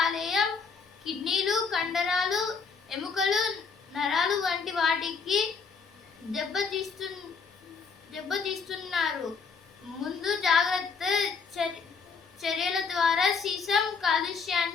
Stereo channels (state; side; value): quieter; right; 5.3 dB